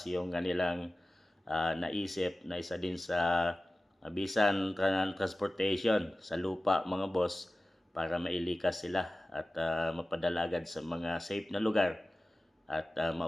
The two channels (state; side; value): normal; both; correlation 0.96